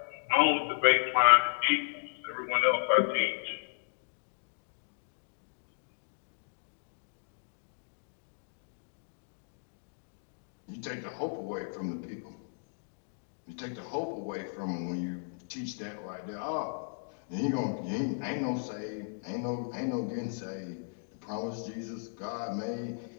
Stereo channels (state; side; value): silent; right; digital silence